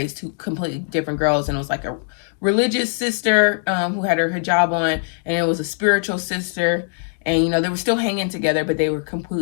two completely different girls, and it was like a religious sister who had her hijab on, and it was a spiritual sister, and you know, they were still hanging together, but they were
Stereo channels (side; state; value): right; silent; 63 dB below the other